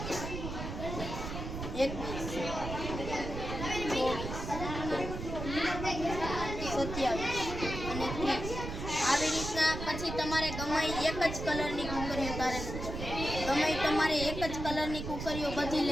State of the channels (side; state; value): right; noise; rumble, 6 dB below the sound